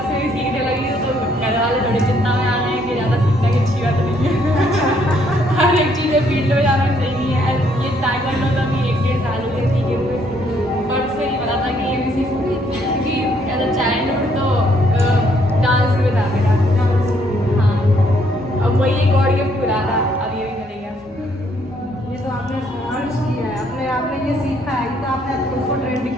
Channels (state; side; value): normal; both; correlation 0.68